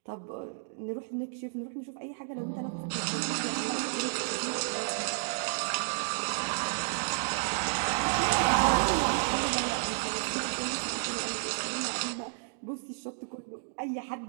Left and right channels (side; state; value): left; silent; digital silence